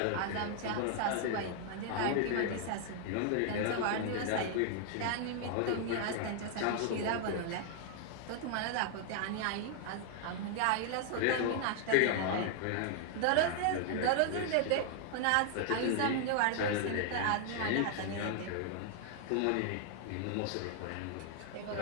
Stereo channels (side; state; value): both; different; correlation 0.00